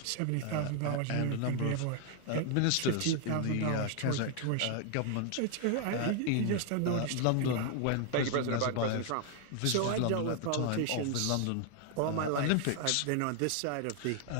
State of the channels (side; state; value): both; different; correlation 0.00